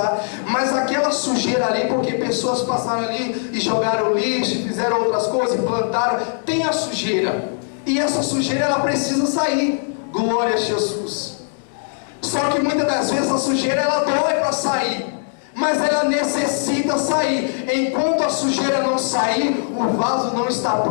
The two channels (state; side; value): silent; right; 65 dB below the other